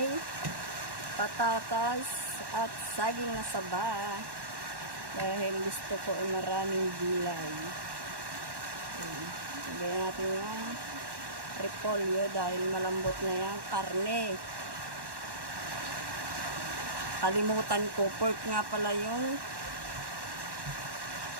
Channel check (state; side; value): late; left; 1.1 ms